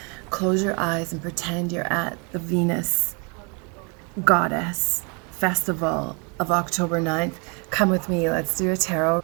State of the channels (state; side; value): quieter; left; 34.0 dB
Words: close your eyes and pretend you're at the Venus Goddess Festival of October 9th. Come with me. Let's do a tarot